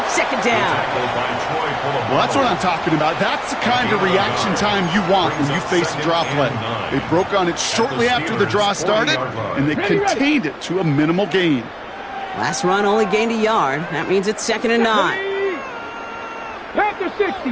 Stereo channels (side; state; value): both; identical; correlation 1.00